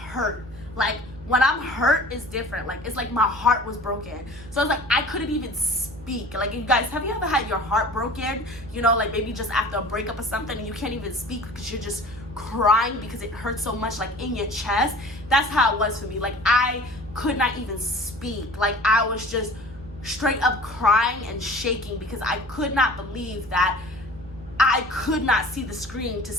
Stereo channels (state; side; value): noise; right; hum, 18 dB below the sound